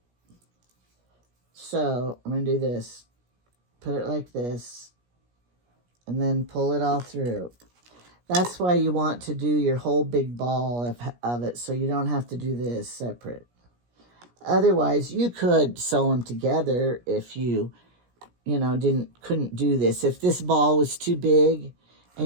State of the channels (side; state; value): left; late; 17 ms